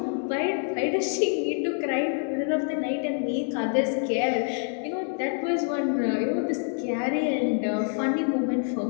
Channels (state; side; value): silent; right; 55 dB below the other